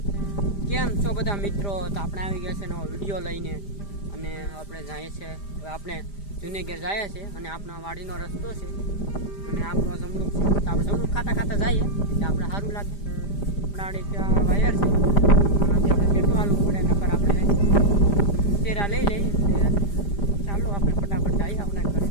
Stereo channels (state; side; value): late; right; 5.0 ms